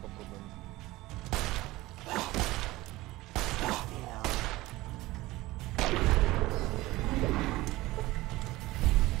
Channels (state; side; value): quieter; left; 18.8 dB